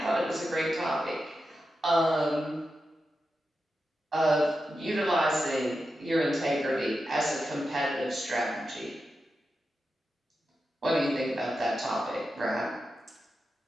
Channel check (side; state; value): both; normal; correlation 0.90